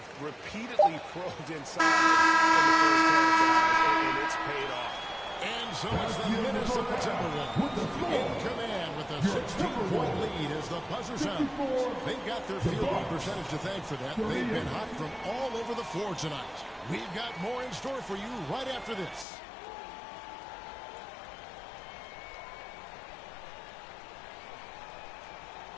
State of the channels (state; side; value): drops out; right; at 19.2 s